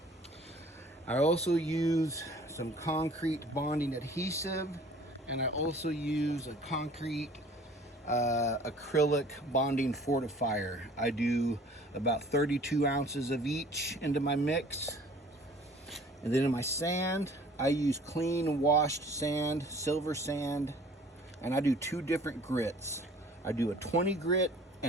I also use some concrete bonding adhesive, and I also use a concrete acrylic bonding fortifier. I do about 32 ounces of each into my mix. And then in my sand, I use clean washed sand, silver sand, and I do 2 different grits. I do a 20 grit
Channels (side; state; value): both; normal; correlation 0.51